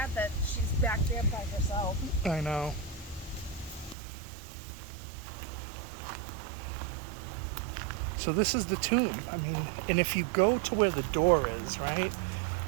that she's back there by herself. I know. So this is the tomb. I mean, and if you go to where the door is, right?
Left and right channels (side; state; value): left; drops out; at 4.0 s